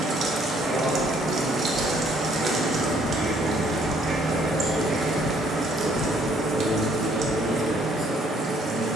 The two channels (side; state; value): both; normal; correlation 0.64